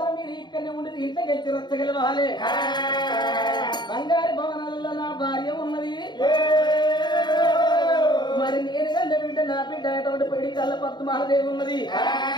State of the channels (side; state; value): right; late; 0.21 ms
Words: మీరు ఇక్కడనే ఉండేది ఇంత గెలిచి రచ్చగలవాలి బంగారు భవనాలలో నా భార్య ఉన్నది మరి నేను గంట బిడ్డ నా బిడ్డ అటువంటి పెడి కళ్ళ పద్మాదేవి ఉన్నది